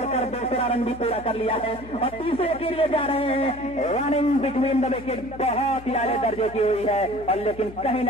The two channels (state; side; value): noise; left; hum, 17 dB below the sound